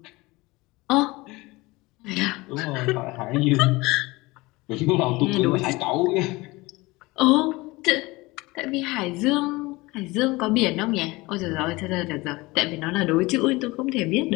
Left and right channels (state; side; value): quieter; right; 22.2 dB